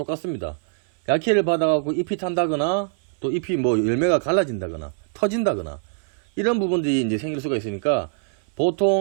약해를 받아갖고 잎이 탄다거나, 또 잎이 뭐 열매가 갈라진다거나 터진다거나 이런 부분들이 이제 생길 수가 있으니까,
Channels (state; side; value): silent; left; 63 dB below the other